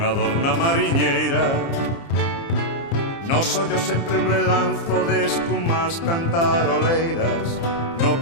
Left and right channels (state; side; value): late; right; 30 ms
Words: adorna mariñeira, nos ollos sempre un relanzo de escumas cantaroleiras, no